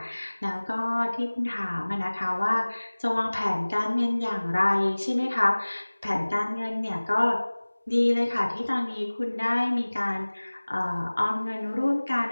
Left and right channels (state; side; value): inverted; both; correlation -1.00